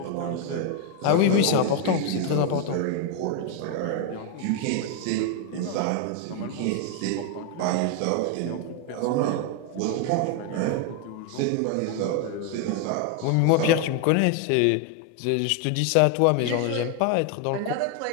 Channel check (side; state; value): both; different; correlation 0.01